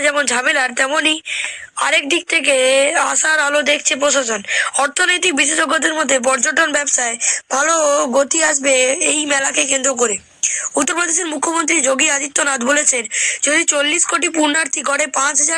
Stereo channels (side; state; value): both; identical; correlation 1.00